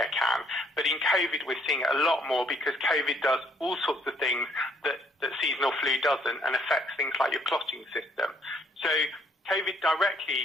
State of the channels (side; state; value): both; normal; correlation 0.65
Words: can. But in COVID, we're seeing it a lot more because COVID does all sorts of things that seasonal flu doesn't and affects things like your clotting system. So COVID